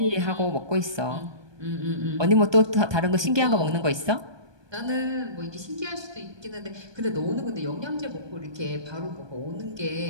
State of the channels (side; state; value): left; late; 1.2 ms